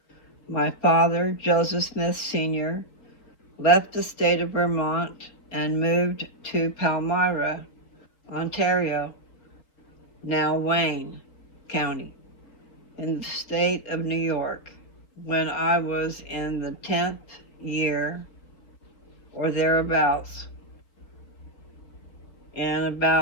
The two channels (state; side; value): late; right; 4.3 ms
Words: My father, Joseph Smith Sr., left the state of Vermont and moved to Palmyra, Ontario, now Wayne County, in the state of New York, when I was in the 10th year or thereabouts. And